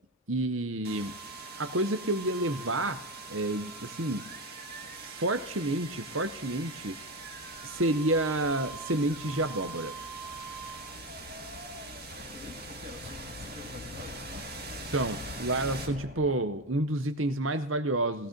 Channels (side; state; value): both; normal; correlation 0.17